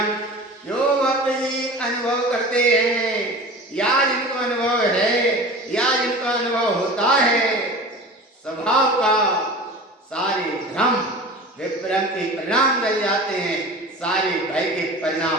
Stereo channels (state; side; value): normal; both; correlation 0.36